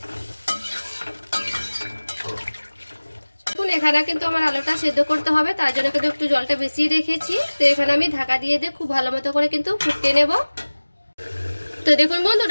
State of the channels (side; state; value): both; inverted; correlation -1.00